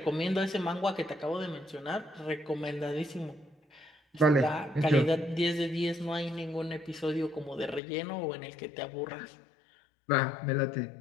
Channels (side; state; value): right; drops out; at 7.8 s